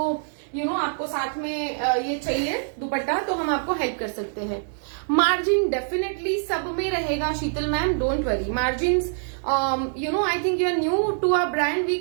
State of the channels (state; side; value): silent; left; digital silence